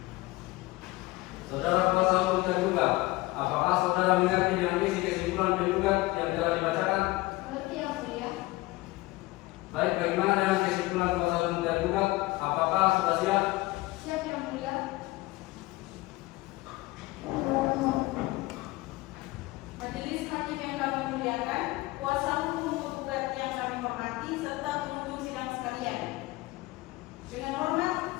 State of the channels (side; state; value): right; quieter; 20.6 dB